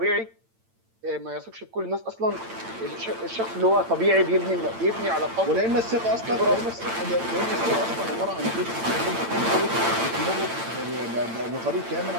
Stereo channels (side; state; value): left; late; 8.9 ms